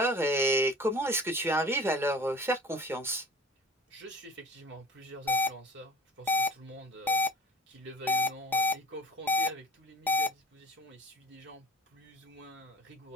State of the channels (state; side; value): normal; both; correlation 0.41